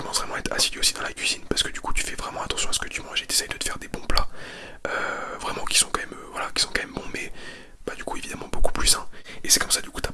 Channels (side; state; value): both; identical; correlation 1.00